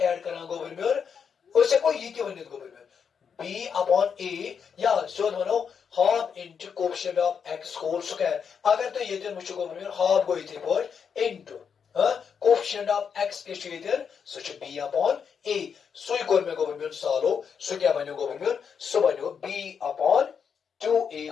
करान गवर्नमेंट उसे कोई ये क्यों नहीं गवर्नमेंट b अपॉन a या सो मनो half into coefficient of x whole square अगर तो ये दिन मुझे गवर्नमेंट हाफ गो इथे पर इनटू कोएफिशिएंट ऑफ x के छेदन सो छ b अपॉन a सो कोर में गवर्नमेंट सॉल्व सो क्या बनो गवर्नमेंट सो बनो b upon 2a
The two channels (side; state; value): right; quieter; 6.8 dB